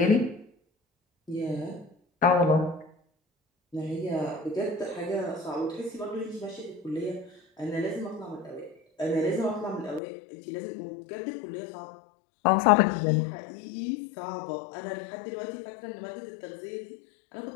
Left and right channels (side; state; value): right; drops out; at 10.0 s